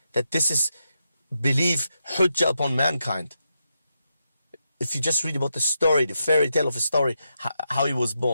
that this is belief hujjah upon mankind. If you just read about the story, the fairy tale of a story, how he was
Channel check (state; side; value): inverted; both; correlation -0.84